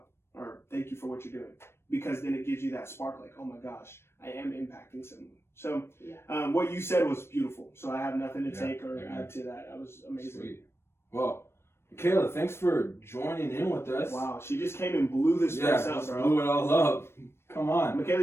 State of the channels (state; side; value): late; right; 0.12 ms